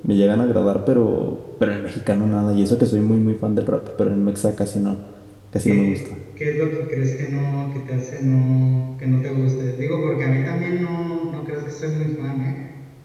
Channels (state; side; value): identical; both; correlation 1.00